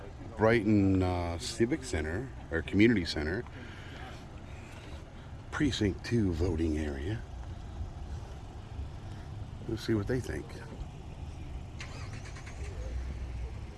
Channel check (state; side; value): identical; both; correlation 1.00